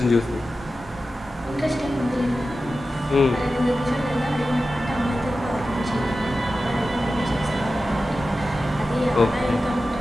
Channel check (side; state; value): both; normal; correlation 0.93